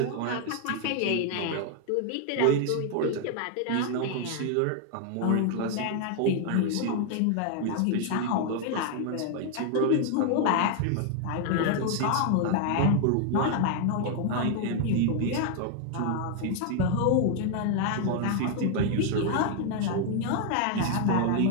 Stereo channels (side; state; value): both; different; correlation 0.00